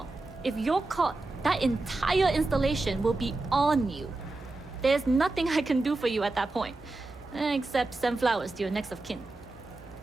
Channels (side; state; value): left; quieter; 3.1 dB